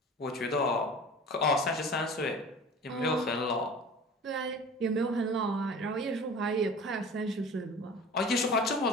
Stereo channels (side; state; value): both; normal; correlation 0.40